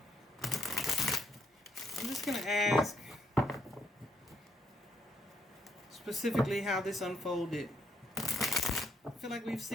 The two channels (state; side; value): normal; both; correlation 0.72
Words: I'm just going to ask specifically how this unfolded. I feel like we've